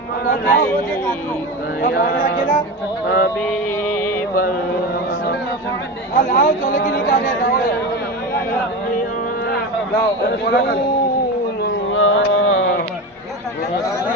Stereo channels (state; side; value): normal; both; correlation 0.23